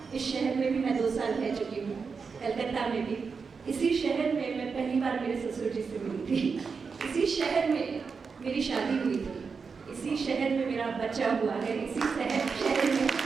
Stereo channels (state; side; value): quieter; left; 5.3 dB